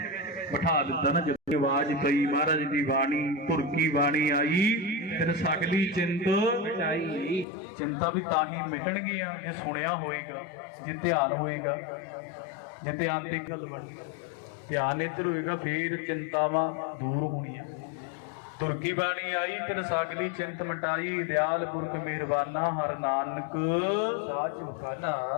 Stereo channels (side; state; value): right; drops out; at 7.5 s